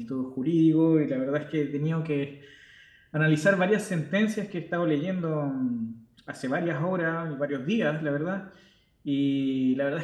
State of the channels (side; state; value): both; identical; correlation 1.00